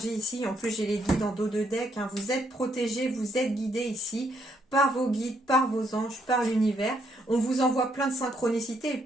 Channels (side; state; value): both; normal; correlation 0.73